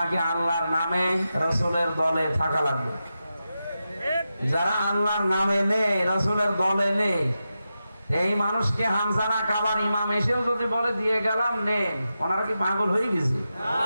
আল্লাহর নামে রাসূলের দলে থাকা লাগবে। যারা আল্লাহর নামে নেই, রাসূলের দলে নেই, এই মানুষকে হামজানা কাবার ইমাম এসেও যদি বলে দিয়ে গেলাম নেন, ওনারা কি পাগল হয়ে গেছে?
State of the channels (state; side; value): inverted; both; correlation -0.90